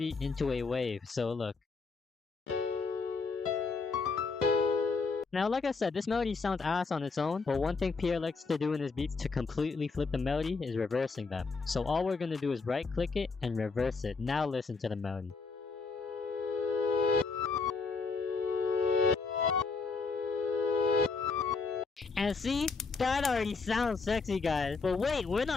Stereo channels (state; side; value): quieter; right; 4.4 dB